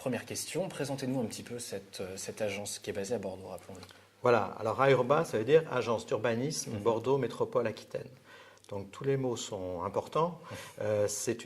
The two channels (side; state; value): both; identical; correlation 1.00